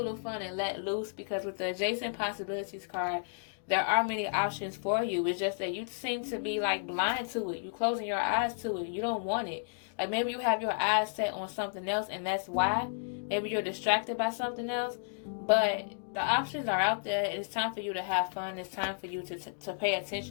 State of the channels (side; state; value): right; silent; digital silence